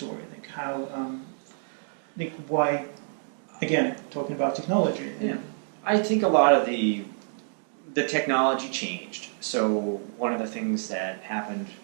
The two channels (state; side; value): silent; left; digital silence